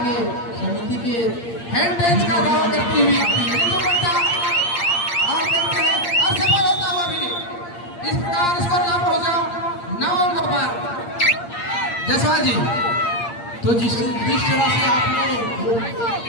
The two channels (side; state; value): right; late; 8.6 ms